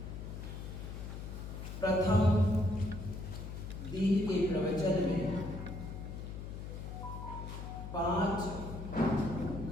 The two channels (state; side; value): noise; left; hum, 8 dB below the sound